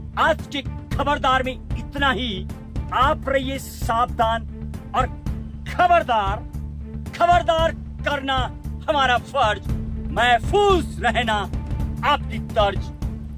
आज के खबरदार में इतना ही। आप रहिए सावधान और खबरदार। खबरदार करना हमारा फर्ज, महफूज रहना आपकी तर्ज।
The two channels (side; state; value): both; identical; correlation 1.00